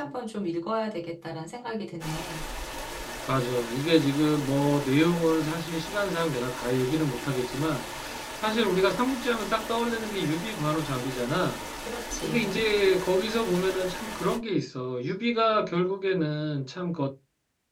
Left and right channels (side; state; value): both; identical; correlation 1.00